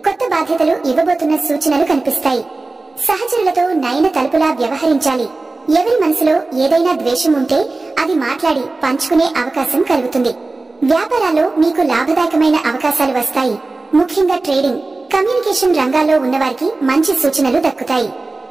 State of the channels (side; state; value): left; quieter; 3.4 dB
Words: కొత్త బాధ్యతలు ఇవ్వబోతున్న సూచనలు కనిపిస్తాయి. సహచరులతో నయన తలుపులా వ్యవహరించాలి. ఎవరి మనసులో ఏదైనా ద్వేషం ఉంటే అది మాట్లాడి పంచుకునే అవకాశం కలుగుతుంది. వ్యాపారాల్లో మీకు లాభదాయకమైన అవకాశాలు వస్తాయి. ముఖ్యంగా ట్రేడింగ్, కమ్యూనికేషన్ రంగాల్లో ఉన్నవారికి మంచి సూచనలు దక్కుతాయి.